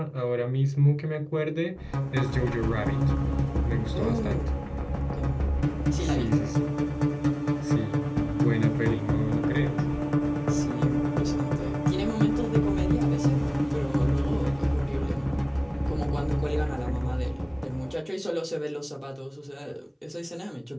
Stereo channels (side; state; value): both; identical; correlation 1.00